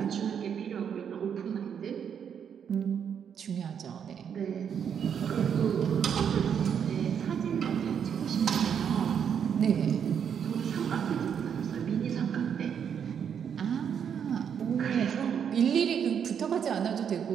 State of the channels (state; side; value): quieter; left; 7.9 dB